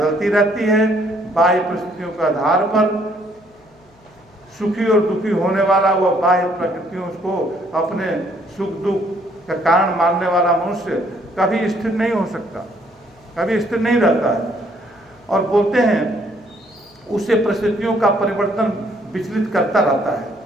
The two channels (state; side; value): noise; left; hum, 30 dB below the sound